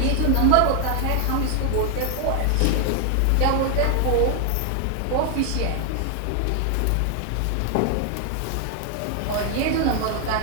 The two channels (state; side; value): different; both; correlation 0.00